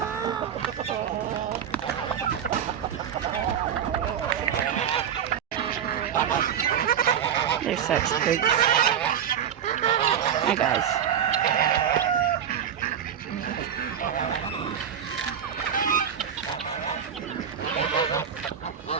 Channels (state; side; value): quieter; left; 8.8 dB